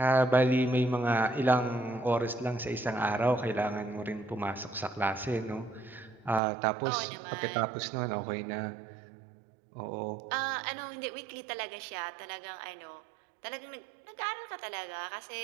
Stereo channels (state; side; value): drops out; left; at 6.4 s